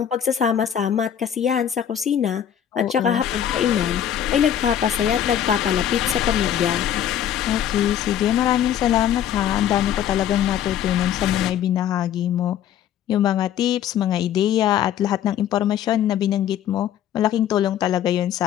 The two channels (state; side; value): quieter; right; 10.2 dB